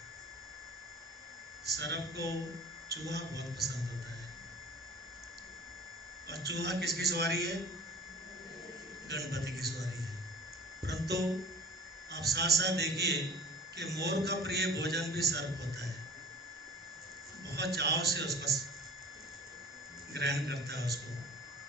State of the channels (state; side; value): normal; both; correlation 0.42